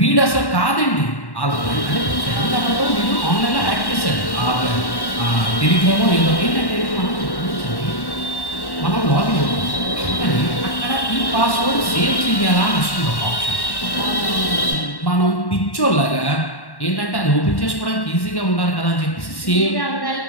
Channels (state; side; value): late; right; 1.1 ms